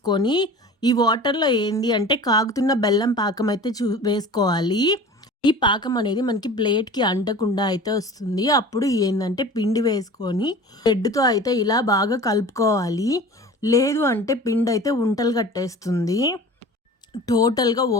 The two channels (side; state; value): both; normal; correlation 0.39